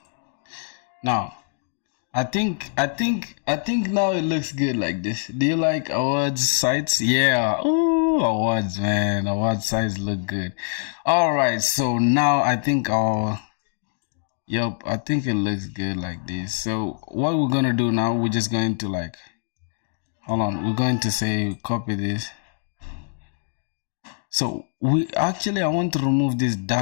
Now, I think now it looks good like this. Do you like awards sites? Yeah. Oh, awards, man. Award sites look good. All right. So now I think our Yep, I think it looks good like this. So what we're gonna do now, we're just going to like, hold on, we're going to say copy this. So I want to remove this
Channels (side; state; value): right; silent; digital silence